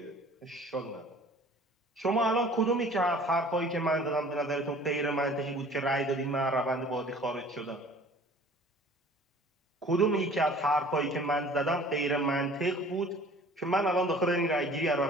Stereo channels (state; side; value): normal; both; correlation 0.49